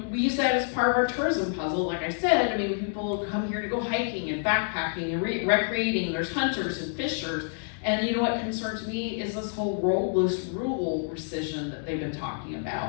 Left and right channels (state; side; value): silent; right; 59 dB below the other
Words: use that as part of our tourism puzzle. Like I said, people come here to go hiking and backpacking and recreating. There's hunters and fishers. And what concerns me is this whole rural precision that they've been talking